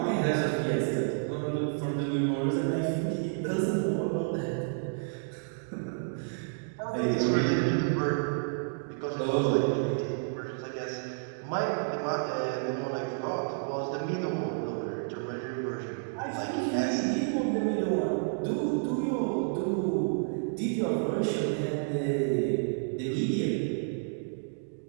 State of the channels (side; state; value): left; silent; digital silence